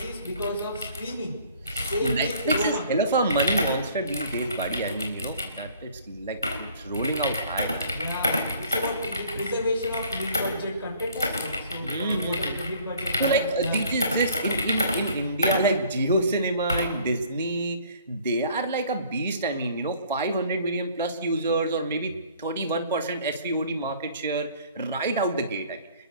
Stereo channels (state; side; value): inverted; both; correlation -0.55